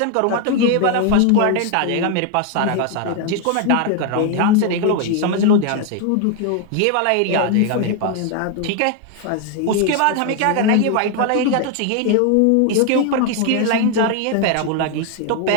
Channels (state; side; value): different; both; correlation 0.01